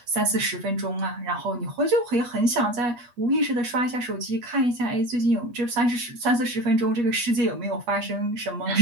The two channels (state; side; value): late; left; 8.3 ms